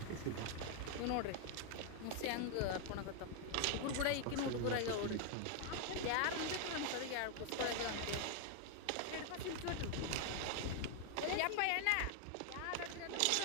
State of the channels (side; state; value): both; different; correlation 0.00